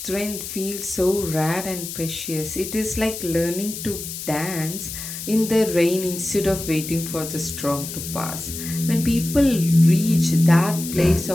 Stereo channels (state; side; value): noise; left; hiss, 8 dB below the sound